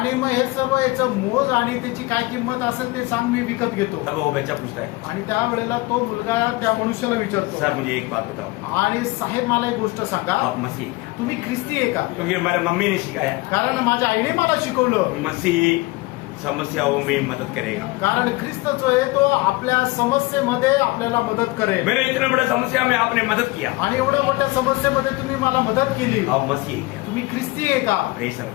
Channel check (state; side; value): quieter; right; 22.2 dB